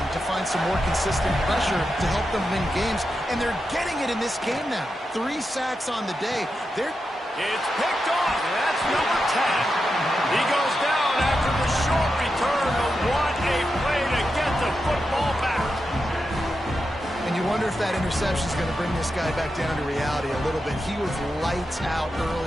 to find some more consistent pressure to help them win games, and they're getting it in this game now. 3 sacks on the day. It's picked off, and that's number 10. He goes down after the short return, but what a play to get the football back. And you wonder if that interception is going to bring this guy back down to reality a little bit. He was lights out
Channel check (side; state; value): both; normal; correlation 0.88